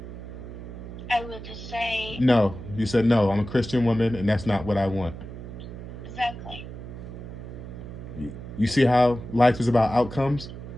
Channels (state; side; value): noise; right; hum, 11 dB below the sound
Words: I would just say No. You said, no, I'm a Christian woman and that's not what I want. exactly. You see how life is about outcomes?